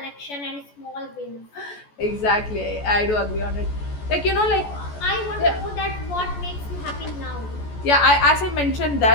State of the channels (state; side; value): late; right; 14 ms